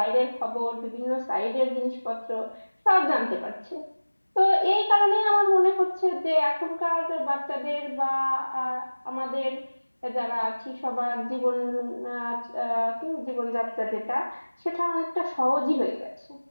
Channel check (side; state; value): both; inverted; correlation -1.00